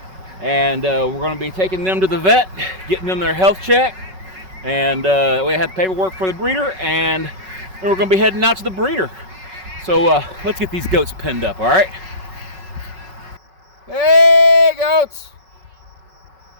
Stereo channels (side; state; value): left; late; 5.3 ms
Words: and we're going to be taking them to the vet, getting them their health check, and we have paperwork for the breeder, and then we're going to be heading out to the breeder. So let's get these goats pinned up. All right. Hey, goats.